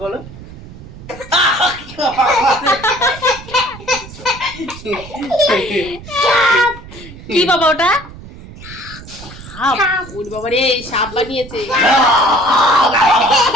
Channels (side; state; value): right; noise; rumble, 16 dB below the sound